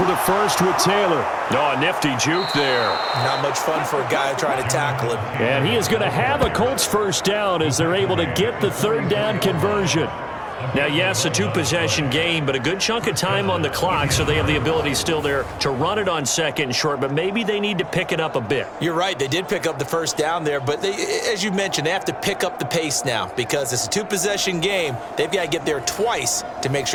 the first with Taylor. Oh, a nifty juke there. Not much fun for a guy trying to tackle him. And he is going to have a Colts 1st down as they're able to get the 3rd down conversion. Now, yes, a 2-possession game, but a good chunk of time on the clock, so they have the ability still there to run it on 2nd and short, but maybe they need to pick it up a bit. You're right. They did pick up the 1st down there, but they, as you mentioned, they have to pick up the pace now because it's a 2-possession game. They've got to get there twice to make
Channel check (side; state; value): both; identical; correlation 1.00